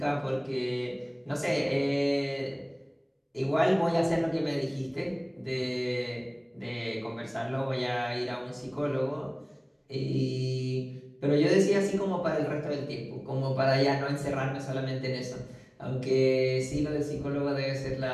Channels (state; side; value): identical; both; correlation 1.00